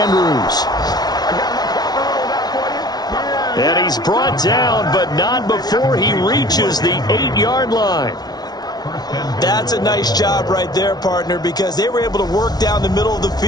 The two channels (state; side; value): late; right; 0.19 ms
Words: And he's brought down, but not before he reaches the 8-yard line. That's a nice job right there, partner, because they were able to work down the middle of the